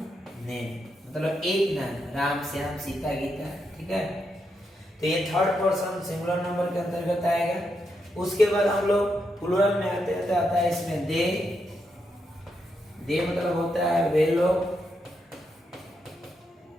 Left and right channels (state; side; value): normal; both; correlation 0.82